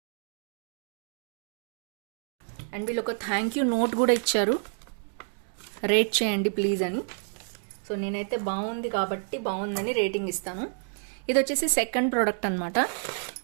అండ్ వీళ్ళు ఒక థ్యాంక్ యూ నోట్ కూడా ఇచ్చారు, రేట్ చేయండి ప్లీజ్ అని. సో నేనైతే బాగుంది కాబట్టి బాగుందని రేటింగ్ ఇస్తాను. ఇది వచ్చేసి సెకండ్ ప్రోడక్ట్ అనమాట.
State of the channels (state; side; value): silent; left; digital silence